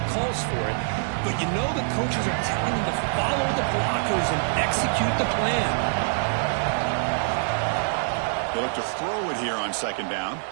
calls for it, but you know the coaches are telling you to follow the blockers and execute the plan. They look to throw it here on second down.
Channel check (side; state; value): left; silent; digital silence